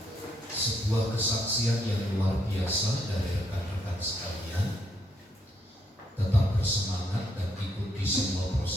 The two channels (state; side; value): normal; both; correlation 0.74